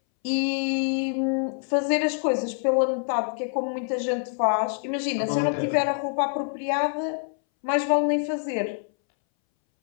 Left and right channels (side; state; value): right; silent; 61 dB below the other